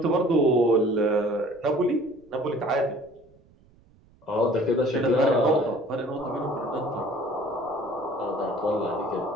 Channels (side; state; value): right; noise; rumble, 30 dB below the sound